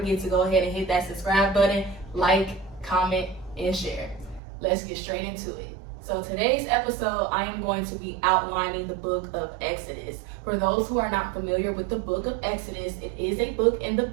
to go ahead and hit that subscribe button, like, comment, and share. Let's get straight into it. So today's episode, I am going to be outlining the book of Exodus. For those who are not familiar with the book of Exodus, it is a book in the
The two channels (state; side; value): drops out; left; at 4.4 s